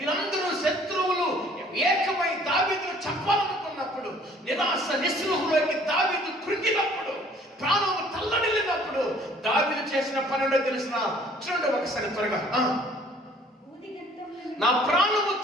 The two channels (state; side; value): normal; both; correlation 0.56